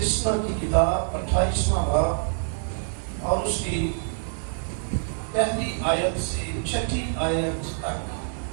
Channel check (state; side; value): silent; left; digital silence